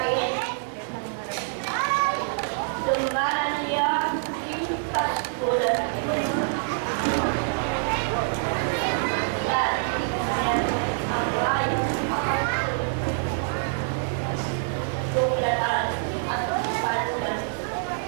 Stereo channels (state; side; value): silent; left; digital silence